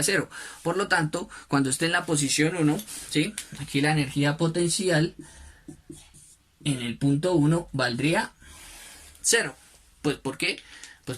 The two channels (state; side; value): identical; both; correlation 1.00